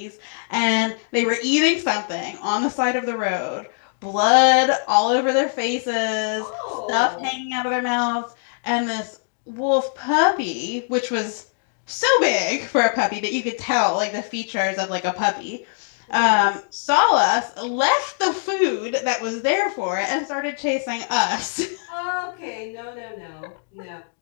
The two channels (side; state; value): right; silent; digital silence